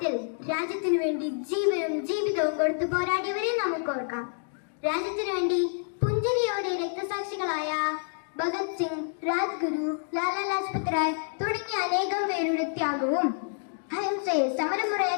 രാജ്യത്തിനു വേണ്ടി ജീവനും ജീവിതവും കൊടുത്തു പോരാടിയവരെ നമുക്ക് ഓർക്കാം. രാജ്യത്തിനു വേണ്ടി പുഞ്ചിരിയോടെ രക്തസാക്ഷികളായ ഭഗത് സിംഗ്, രാജ്ഗുരു, ലാലാ ലജ്പത് റായ് തുടങ്ങിയ അനേകം പേരുടെ ത്യാഗവും അഹിംസയെ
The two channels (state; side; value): silent; right; digital silence